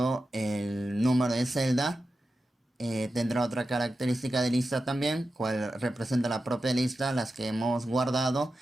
el número de celda tendrá otra característica de lista también, cual representa la propia lista, las que hemos guardado.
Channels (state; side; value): normal; both; correlation 0.92